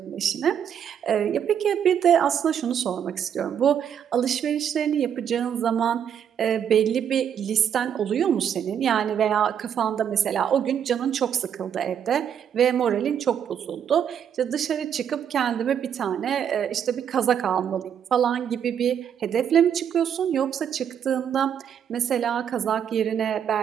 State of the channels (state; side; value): quieter; left; 8.6 dB